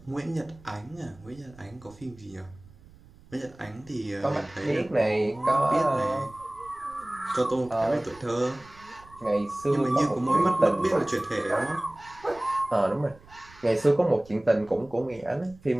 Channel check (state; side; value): noise; right; rumble, 24 dB below the sound